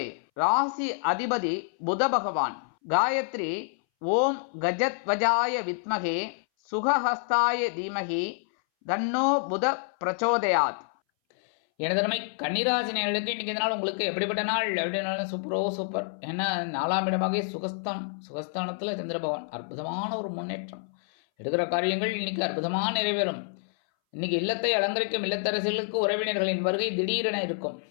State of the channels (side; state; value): right; silent; 60 dB below the other